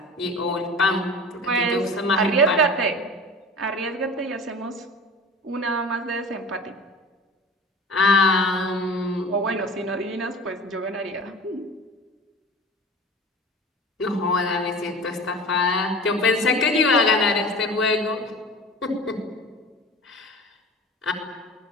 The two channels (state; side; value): normal; both; correlation 0.38